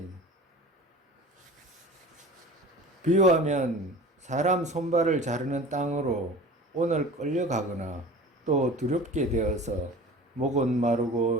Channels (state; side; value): normal; both; correlation 0.39